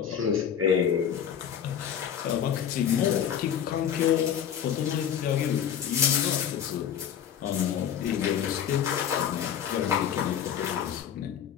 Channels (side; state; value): right; quieter; 8.9 dB